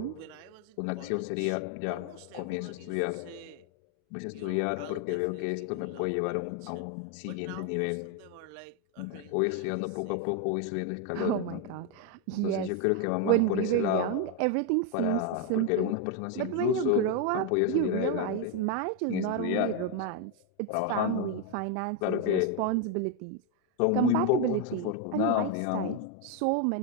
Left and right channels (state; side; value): different; both; correlation 0.02